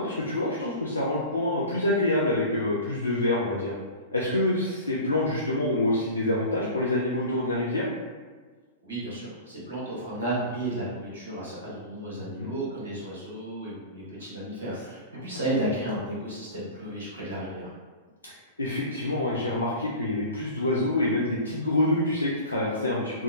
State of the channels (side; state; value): both; inverted; correlation -0.36